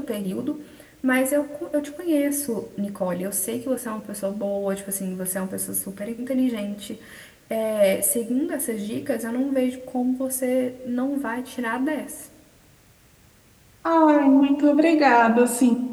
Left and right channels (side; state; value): both; identical; correlation 1.00